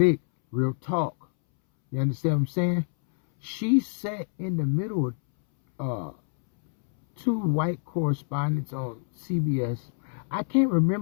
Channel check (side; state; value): right; silent; 61 dB below the other